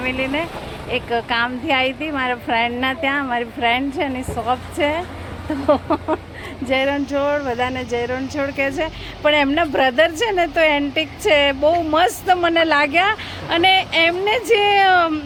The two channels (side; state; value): both; identical; correlation 1.00